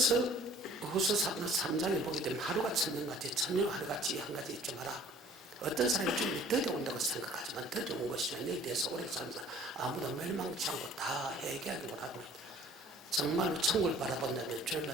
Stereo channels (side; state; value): both; normal; correlation 0.52